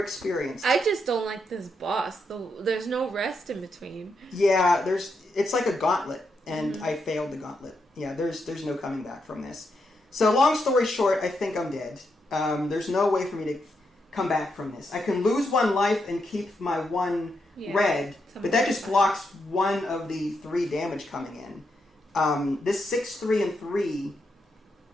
I just don't like this boss. There's no rest in between. Yeah, it's like a gauntlet, and I failed the gauntlet. Yeah, there's no coming back from this. So long story short, I think I'm dead. There's no way for me to come back from this. I can lose 1 life and keep my 1 red, but that just blocks 1 of the 3 damage coming in. This 6, 3, and 3,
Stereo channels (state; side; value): normal; both; correlation 0.82